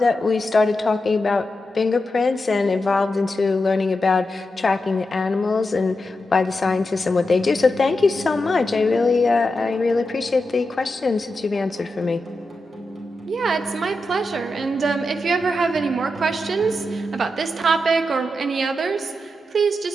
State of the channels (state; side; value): normal; both; correlation 0.88